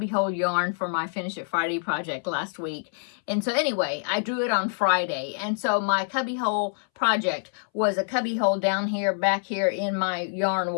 yarn for my Finish It Friday project last week. And so anyway, I drew it on Friday. And so my cubbyhole project was a cubbyhole down here, back here in my yarn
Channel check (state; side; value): silent; right; 61 dB below the other